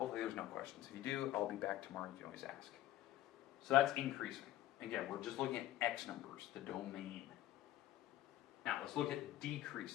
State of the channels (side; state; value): right; quieter; 14.1 dB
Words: there's no questions. If you do, I'll be back tomorrow. You can always ask. So that's increasing. Again, we're just looking at x numbers, the domain. Now let's look at